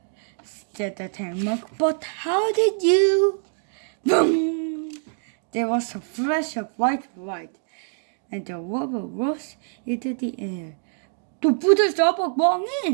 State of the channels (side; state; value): left; silent; digital silence